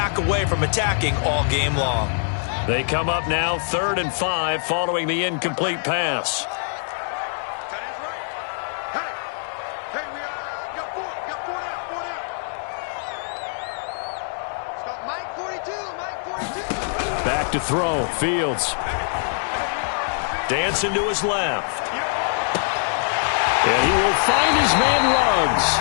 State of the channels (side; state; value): right; silent; digital silence